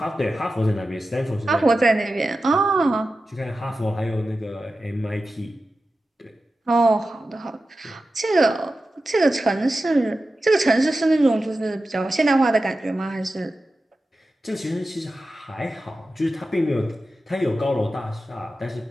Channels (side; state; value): both; normal; correlation 0.93